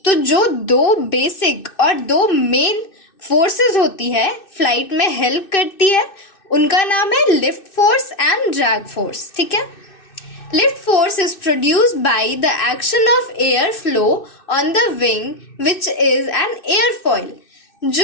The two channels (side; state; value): right; late; 2.6 ms